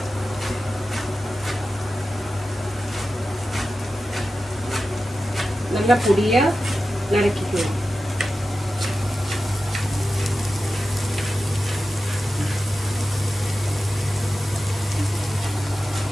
நல்லா பொடியா நறுக்கிக்கணும்.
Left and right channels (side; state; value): both; normal; correlation 0.93